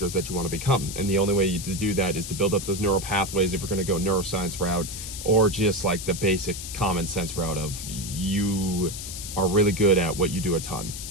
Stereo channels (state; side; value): noise; left; hiss, 8 dB below the sound